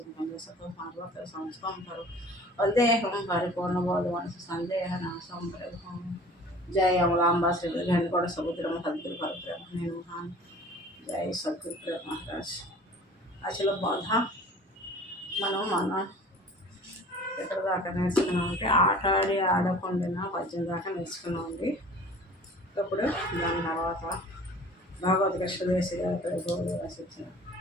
सर्वत्र संस्थं करो वंदेहं परिपूर्णबोधमनसु संदेहनाशं प्रभुं। जय अमलांबा श्री घनकोट समुद्रम सद्गुरु परब्रह्म महान। जय सद्गुरु महाराज। అసలు బాధ మనం ఎక్కడ దాకా నేర్చుకున్నామంటే ఆట ఆడి ఆడకుండా పద్యం దాకా నేర్చుకున్నామండి. ఇప్పుడు దాని తర్వాత భగవద్ కృష్ణదేశి గారు రచించిన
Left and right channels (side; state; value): both; normal; correlation 0.46